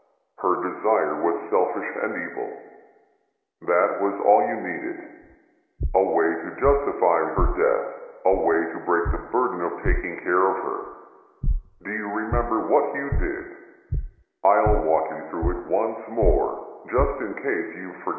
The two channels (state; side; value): identical; both; correlation 1.00